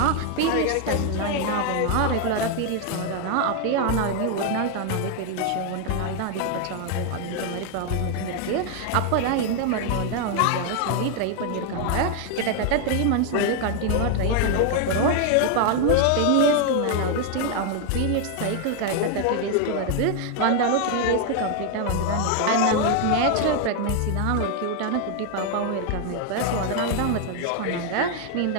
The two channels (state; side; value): different; both; correlation 0.00